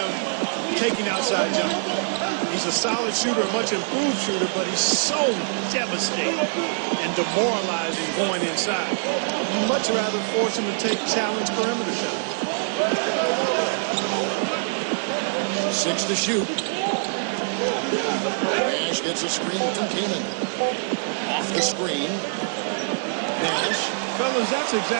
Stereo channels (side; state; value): left; silent; digital silence